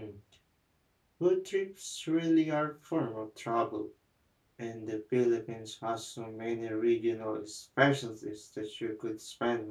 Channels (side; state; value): both; identical; correlation 1.00